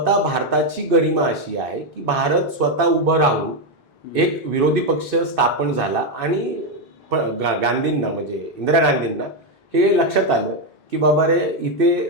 भारताची गरिमा अशी आहे की भारत स्वतः उभं राहून एक विरोधी पक्ष स्थापन झाला आणि गांधींना म्हणजे इंदिरा गांधींना हे लक्षात आलं की बाबा रे,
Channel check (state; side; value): normal; both; correlation 0.05